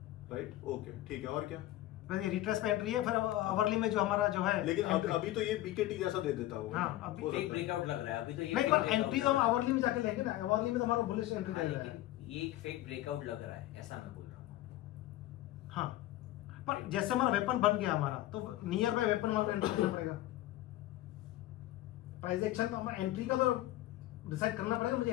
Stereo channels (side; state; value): right; quieter; 15.6 dB